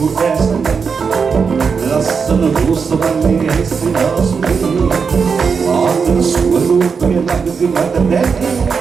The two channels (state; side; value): quieter; left; 5.7 dB